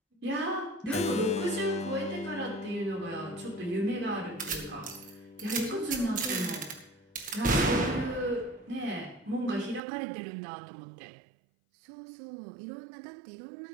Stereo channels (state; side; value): drops out; left; at 9.8 s